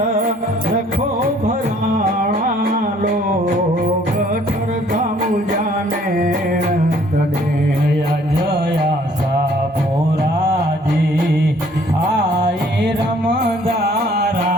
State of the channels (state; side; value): normal; both; correlation 0.59